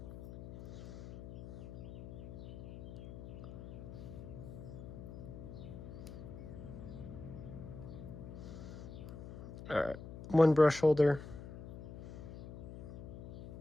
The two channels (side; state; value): left; noise; hum, 11 dB below the sound